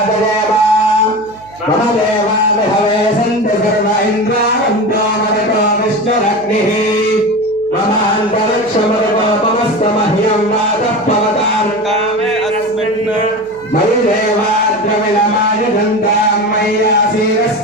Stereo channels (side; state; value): right; noise; hum, 25 dB below the sound